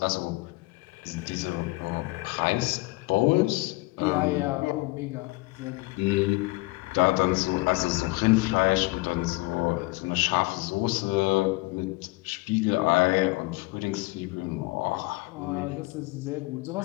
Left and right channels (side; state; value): right; quieter; 23.3 dB